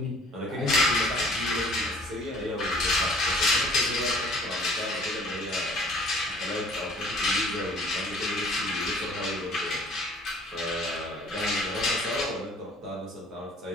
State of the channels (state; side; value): normal; both; correlation 0.54